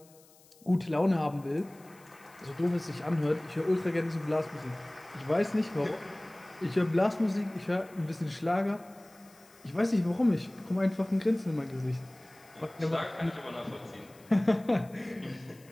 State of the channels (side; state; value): left; noise; hiss, 27 dB below the sound